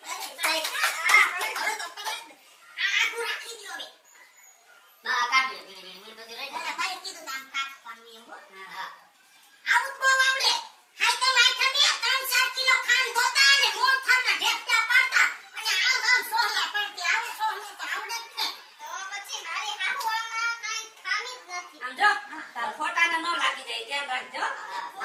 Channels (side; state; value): both; identical; correlation 1.00